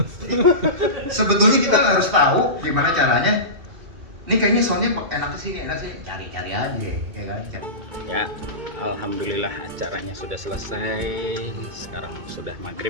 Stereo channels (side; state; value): left; late; 2.6 ms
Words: Sebetulnya kita harus tahu gimana caranya. Ini kayaknya soundnya enak sini, cari-cari aja, ya kan? Ya, alhamdulillah acaranya sudah selesai. Sekarang sudah